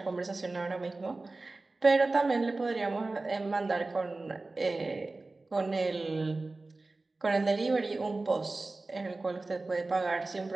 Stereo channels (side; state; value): left; quieter; 3.3 dB